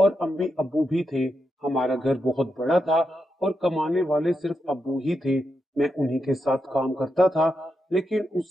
अम्मी अब्बू भी थे। हमारा घर बहुत बड़ा था और कमाने वाले सिर्फ अब्बू ही थे। मैं उन्हीं के साथ काम करता था, लेकिन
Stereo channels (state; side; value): normal; both; correlation 0.85